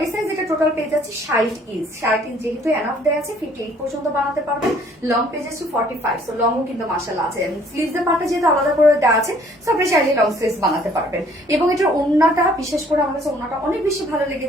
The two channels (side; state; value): both; normal; correlation 0.59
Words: সাইজ এটা টোটাল পেয়ে যাচ্ছি 60 ইঞ্চ। 60 ইঞ্চ যেহেতু এনাফ দেওয়া আছে, 58 পর্যন্ত বানাতে পারবেন। লং পেয়ে যাচ্ছি 45। সো লংও কিন্তু মাশাআল্লাহ আছে। স্লিভস এর পার্টটা যেহেতু আলাদা করে দেওয়া আছে, সো আপনি চাইলে লং স্লিভস বানাতে পারবেন। এবং এটার ওড়নাটা, বিশেষ করে আমার কাছে ওড়নাটা অনেক বেশি ভালো